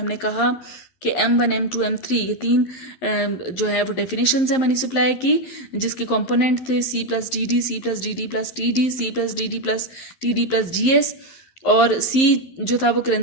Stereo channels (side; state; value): right; late; 11 ms